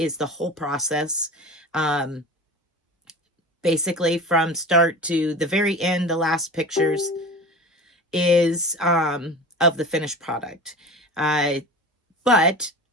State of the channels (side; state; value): both; normal; correlation 0.34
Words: the whole process. Basically from start to the very end, the last pictures is of the finished product. But